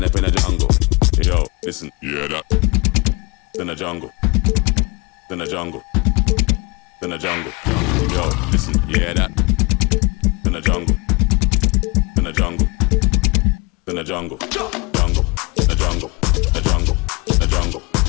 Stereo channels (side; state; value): right; quieter; 26.4 dB